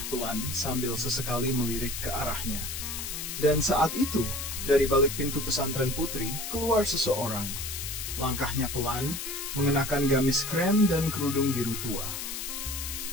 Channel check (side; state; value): left; noise; hiss, 5 dB below the sound